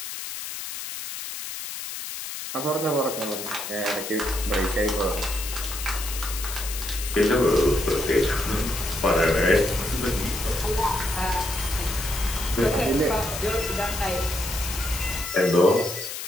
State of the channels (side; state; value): left; noise; hiss, 7 dB below the sound